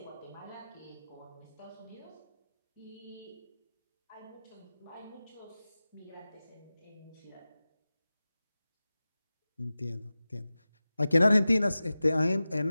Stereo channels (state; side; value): inverted; both; correlation -0.96